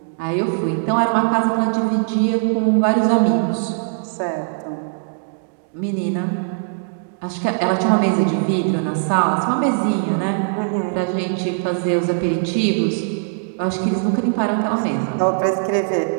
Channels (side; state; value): left; silent; digital silence